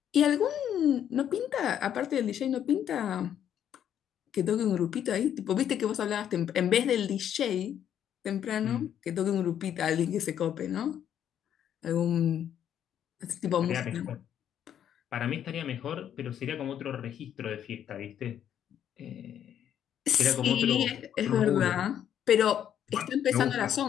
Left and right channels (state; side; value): quieter; right; 9.8 dB